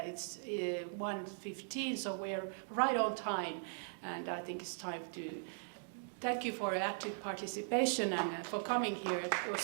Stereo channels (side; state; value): left; silent; digital silence